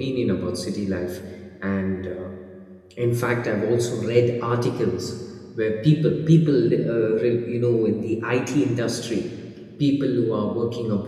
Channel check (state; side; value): identical; both; correlation 1.00